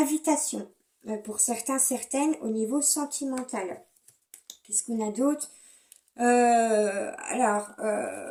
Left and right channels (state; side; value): identical; both; correlation 1.00